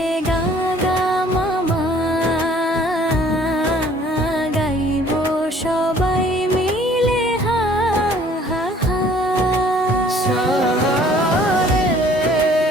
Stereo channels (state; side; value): normal; both; correlation 0.56